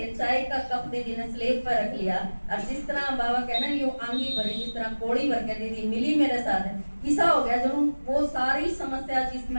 चाय का कप दीदी ने स्लेब पर रख लिया, और जिस तरह बाबा कहना यूं आंगी भरी, जिस तरह कोड़ी भर के दीदी मिली मेरे साथ। ऐसा हो गया जो वो सारी समस्या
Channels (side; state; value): both; inverted; correlation -1.00